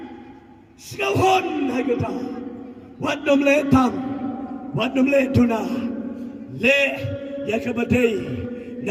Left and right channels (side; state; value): both; identical; correlation 1.00